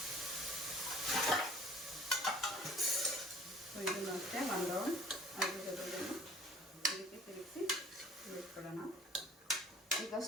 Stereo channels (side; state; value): both; normal; correlation 0.50